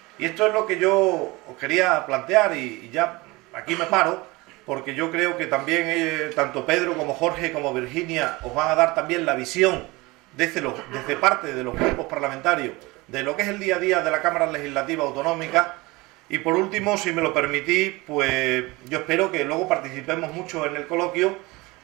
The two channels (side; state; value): left; quieter; 22.9 dB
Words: Y esto es lo que yo os quería plantear y ya aquí me paro, porque yo creo que también tanto Pedro como Jorge como Virginia os van a dar también la visión desde parte de los grupos parlamentarios de lo que es el día a día de la Cámara Legislativa Autonómica. Y por último, si me lo permitís, pues yo espero que luego participemos mucho en el coloquio